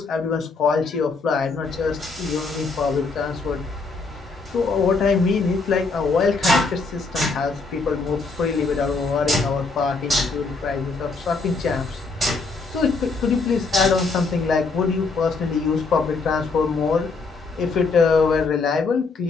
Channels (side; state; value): right; quieter; 4.1 dB